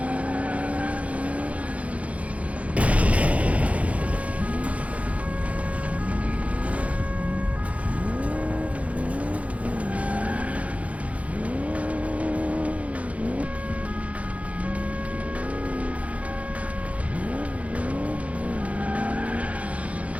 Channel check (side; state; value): left; late; 0.065 ms